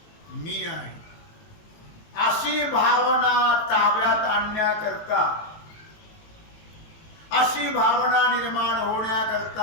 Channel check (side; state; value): right; late; 18 ms